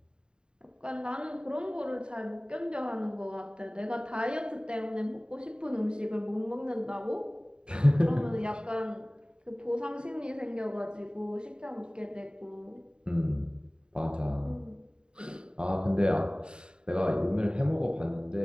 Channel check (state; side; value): late; left; 0.049 ms